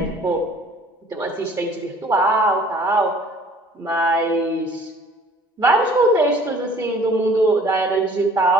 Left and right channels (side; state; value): both; normal; correlation 0.53